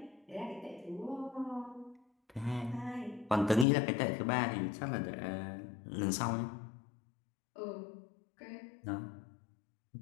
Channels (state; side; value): drops out; right; at 3.7 s